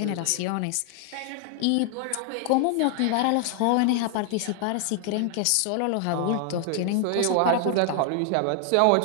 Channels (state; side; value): different; both; correlation 0.00